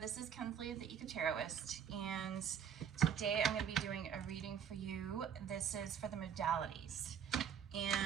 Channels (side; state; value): left; quieter; 8.2 dB